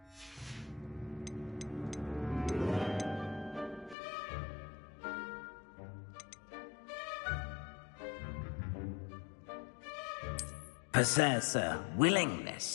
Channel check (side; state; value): right; drops out; at 4.0 s